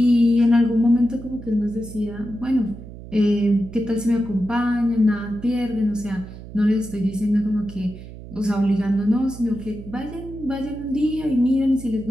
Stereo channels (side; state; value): right; noise; hum, 14 dB below the sound